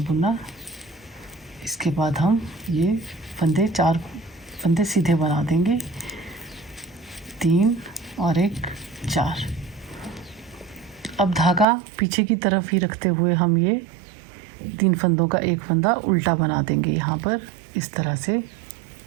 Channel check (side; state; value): left; drops out; at 11.7 s